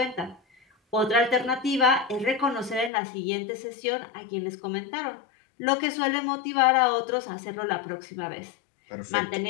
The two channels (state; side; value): drops out; right; at 2.9 s